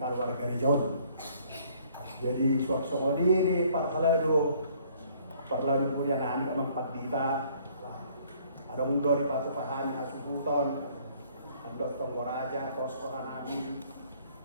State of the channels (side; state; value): both; inverted; correlation -0.61